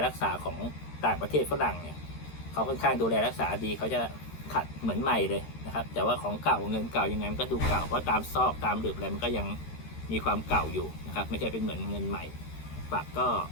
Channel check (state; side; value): late; right; 13 ms